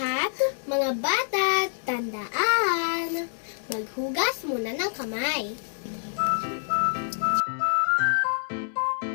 mga bata, tandaan, maghugas muna ng kamay.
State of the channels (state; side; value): silent; right; 60 dB below the other